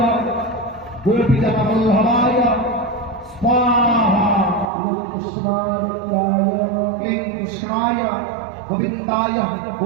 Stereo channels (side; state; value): left; drops out; at 4.7 s